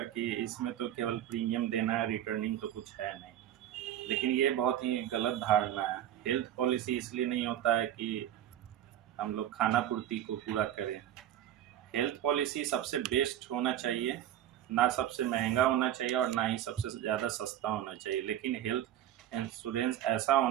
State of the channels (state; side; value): quieter; left; 11.5 dB